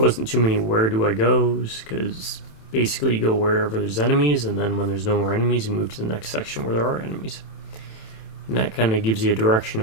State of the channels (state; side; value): late; right; 27 ms